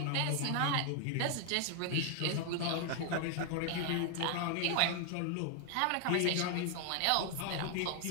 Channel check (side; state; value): both; different; correlation 0.00